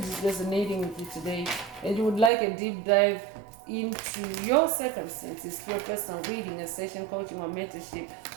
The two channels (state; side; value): drops out; left; at 2.3 s